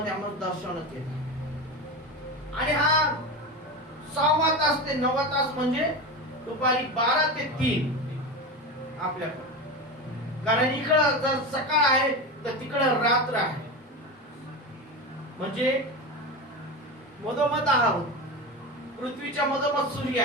आम्हाला दर्शवण्यात येतं. आणि हा 6वा तास ते 9वा तास म्हणजे दुपारी 12 ते 3 आपल्याकडे. कारण इकडं जर सकाळ आहे तर तिकडं रात्र आहे. म्हणजे मधोमध आहोत, पृथ्वीच्या मधोमध सूर्य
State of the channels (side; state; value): both; normal; correlation 0.22